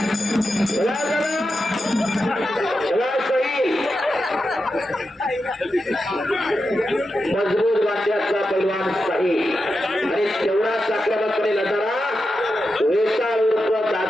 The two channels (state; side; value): normal; both; correlation 0.89